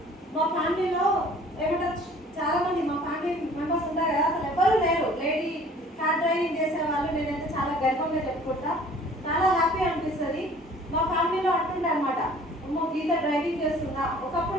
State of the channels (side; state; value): both; normal; correlation 0.51